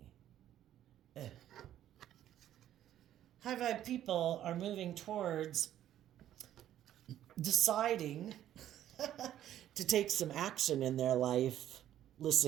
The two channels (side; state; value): left; quieter; 11.8 dB